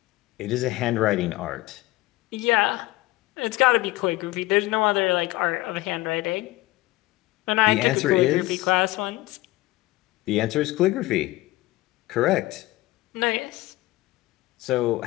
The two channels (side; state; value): right; quieter; 18.9 dB